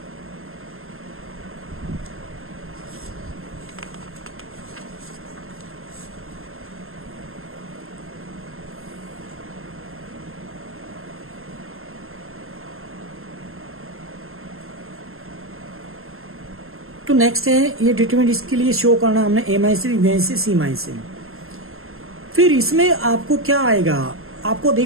तो नेक्स्ट है ये डिटरमिनेंट, इसके लिए शो करना हमने a minus b minus c minus से। फिर इसमें आपको क्या आएगा, आपको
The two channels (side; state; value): left; late; 0.61 ms